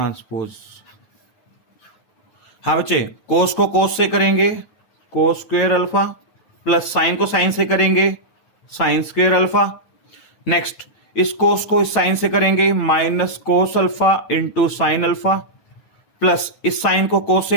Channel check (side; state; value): right; late; 9.4 ms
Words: हाँ बच्चे कोस को कोस से करेंगे cos square alpha, plus sign को साइन से करेंगे साइन स्क्वायर अल्फा। नेक्स्ट इस कोस को इस साइन से करेंगे minus cos alpha into sine alpha, plus इस साइन को कोस